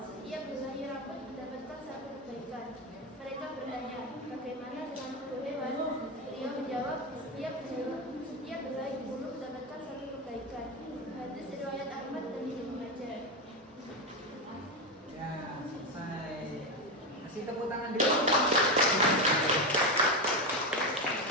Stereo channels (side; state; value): both; normal; correlation 0.14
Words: "setiap helai rambut mendapatkan satu kebaikan." Mereka bertanya, "Bagaimana dengan bulu hewan?" Beliau menjawab, setiap helai bulu mendapatkan satu kebaikan." Hadis riwayat Ahmad dan Ibnu Majah. Ya, selesai. Kasih tepuk tangan dulu.